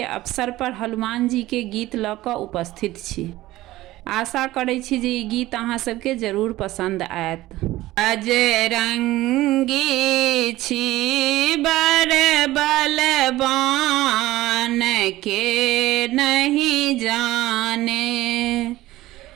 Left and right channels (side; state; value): left; quieter; 16.8 dB